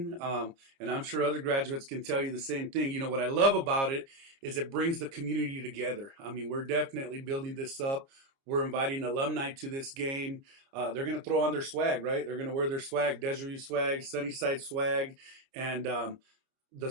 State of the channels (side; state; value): left; late; 29 ms